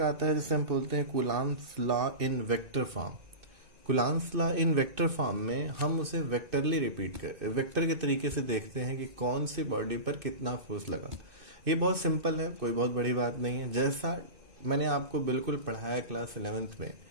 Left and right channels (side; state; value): left; late; 2.6 ms